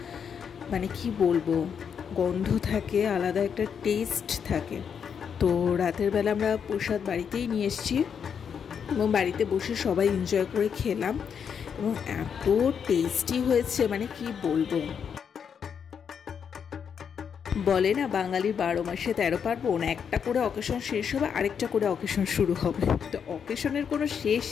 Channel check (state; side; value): quieter; right; 7.2 dB